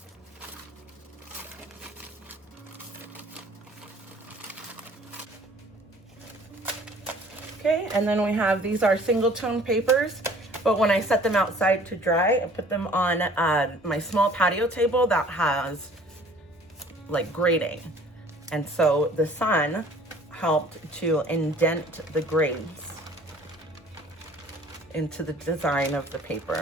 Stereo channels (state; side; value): normal; both; correlation 0.52